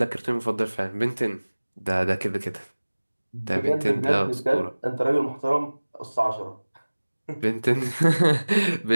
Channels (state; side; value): inverted; both; correlation -1.00